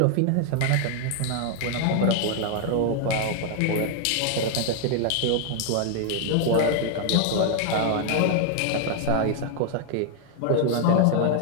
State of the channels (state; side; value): different; both; correlation 0.00